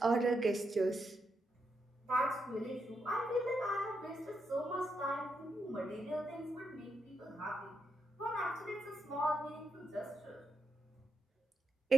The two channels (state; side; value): normal; both; correlation 0.82